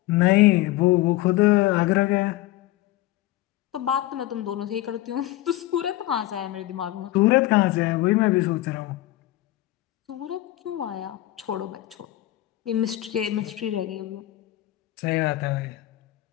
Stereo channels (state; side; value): quieter; right; 16.0 dB